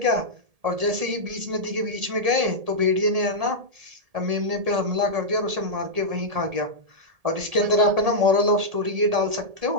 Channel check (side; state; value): left; late; 1.7 ms